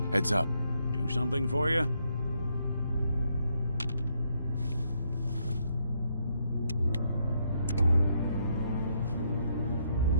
Heads up. do something for you?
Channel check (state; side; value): inverted; both; correlation -0.75